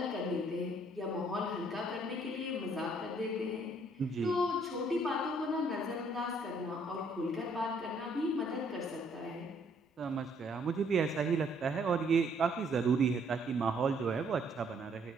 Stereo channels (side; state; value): both; normal; correlation 0.65